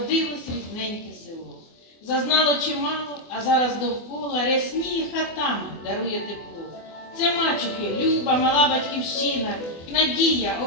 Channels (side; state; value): right; late; 24 ms